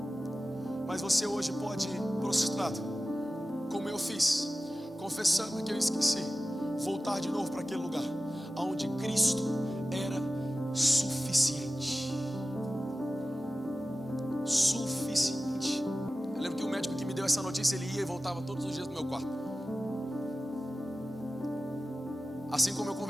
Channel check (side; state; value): both; normal; correlation 0.95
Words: Mas você hoje pode ir prostrado, como eu fiz, confessando que eu esqueci, voltar de novo para aquele lugar onde Cristo era suficiente. Suficiente. Eu lembro que o médico que me deu essa notícia, ele ia e voltava todos os dias no meu quarto, assim como eu